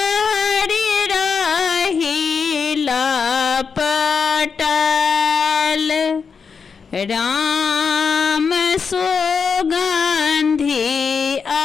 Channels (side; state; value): right; quieter; 5.7 dB